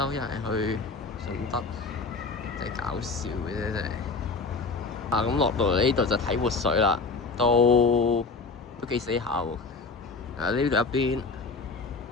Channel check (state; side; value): quieter; right; 4.2 dB